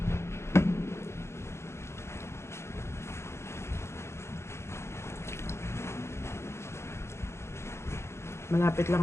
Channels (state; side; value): late; right; 0.13 ms